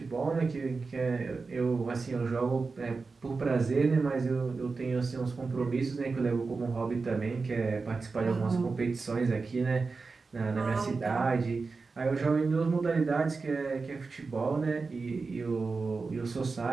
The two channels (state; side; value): quieter; left; 4.3 dB